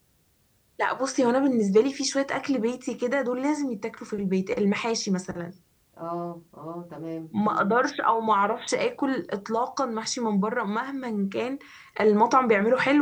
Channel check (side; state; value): both; identical; correlation 1.00